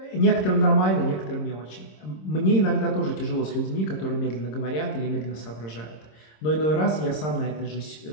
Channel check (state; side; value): late; right; 26 ms